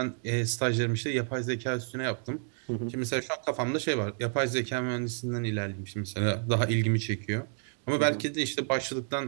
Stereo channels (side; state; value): left; silent; 58 dB below the other